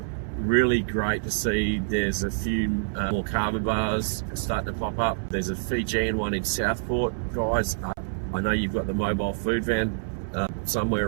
really great to see. There's a few more Kava bars starting to pop up. There's a Fijian one in Southport, guys. I know you've got the mobile food van somewhere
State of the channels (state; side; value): silent; left; 61 dB below the other